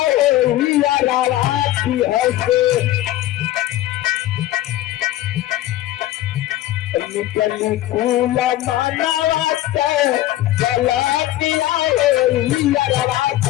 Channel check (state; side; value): quieter; right; 14.6 dB